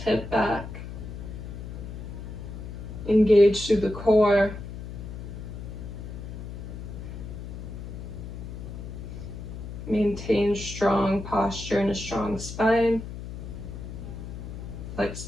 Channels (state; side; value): noise; left; hum, 9 dB below the sound